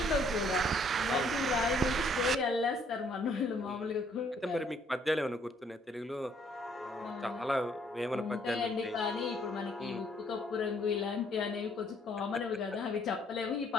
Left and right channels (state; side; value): normal; both; correlation 0.65